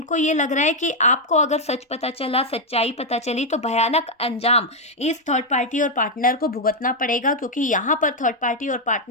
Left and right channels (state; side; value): normal; both; correlation 0.01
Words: ये लग रहा है कि आपको अगर सच पता चला, सच्चाई पता चली, तो भयानक अंजाम इस थर्ड पार्टी और पार्टनर को भुगतना पड़ेगा। क्योंकि यहाँ पर थर्ड पार्टी और